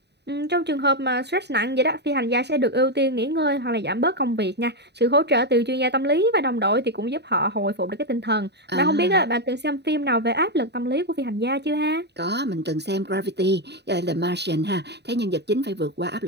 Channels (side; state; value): left; late; 0.49 ms